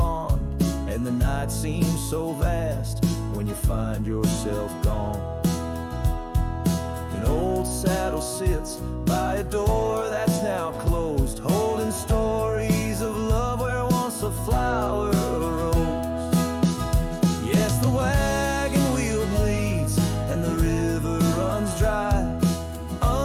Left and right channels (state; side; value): identical; both; correlation 1.00